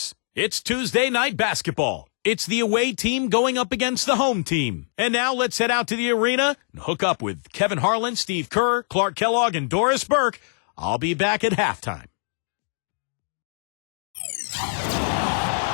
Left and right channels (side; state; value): right; silent; 63 dB below the other